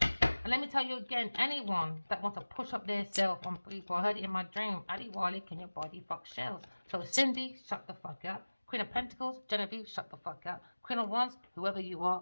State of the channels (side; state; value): both; inverted; correlation -1.00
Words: let me tell you again, anyone that wants to push up their self on people, I heard it in my dream. Adi Wally, can your body fuck shells? So Cindy, shut the fuck up. Queen of Pentacles, Genevieve, shut the fuck up. Queen of Wands, whoever you